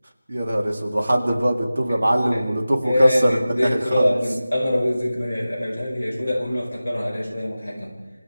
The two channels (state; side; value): inverted; both; correlation -0.96